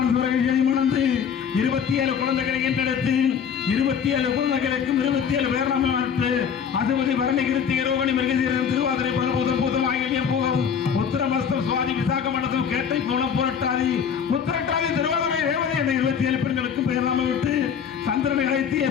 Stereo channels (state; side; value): quieter; right; 7.4 dB